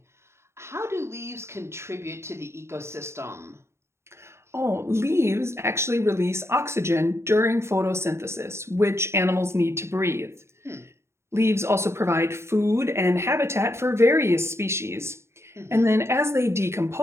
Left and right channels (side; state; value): left; late; 0.13 ms